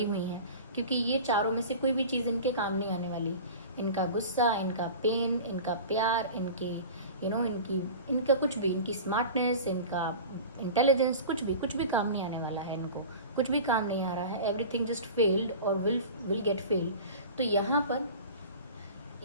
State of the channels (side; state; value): both; inverted; correlation -0.36